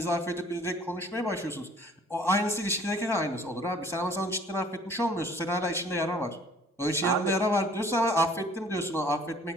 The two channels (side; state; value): both; normal; correlation 0.55